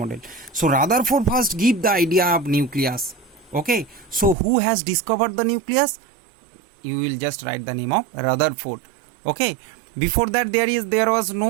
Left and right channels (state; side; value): drops out; left; at 4.4 s